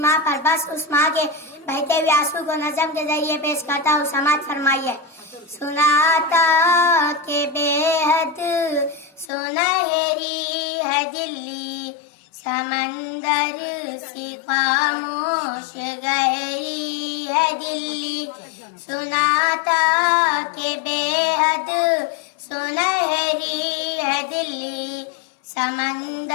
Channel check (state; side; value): drops out; right; at 9.3 s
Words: पर। बस उस माँ के बहते हुए आंसू को नज़म के जरिए पेश करता हूँ, समाज फरमाइए। सुनाता के बेहद सुनहरी है दिल्ली, समंदर सी खामोश गहरी है दिल्ली। सुनाता के बेहद सुनहरी है दिल्ली,